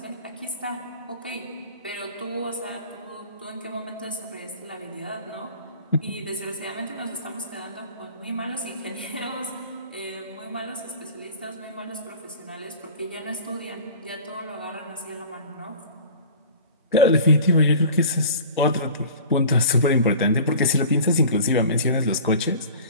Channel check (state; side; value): inverted; both; correlation -0.40